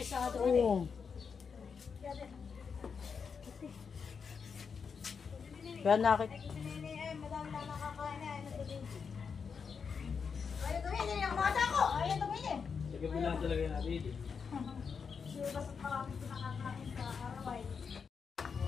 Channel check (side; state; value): right; quieter; 6.0 dB